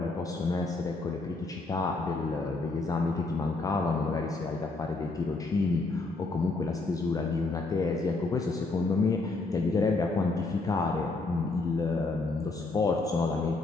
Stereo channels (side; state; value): right; quieter; 3.5 dB